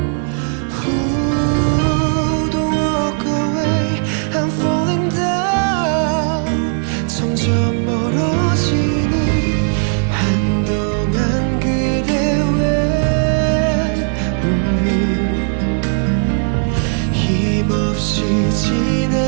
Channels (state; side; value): silent; left; 56 dB below the other